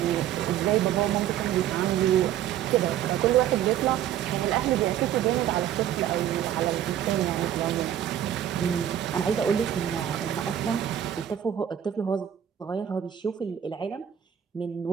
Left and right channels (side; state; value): left; quieter; 10.5 dB